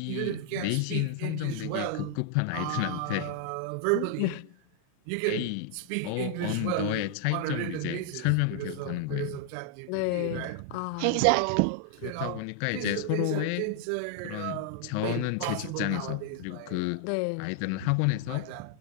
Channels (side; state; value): both; different; correlation 0.00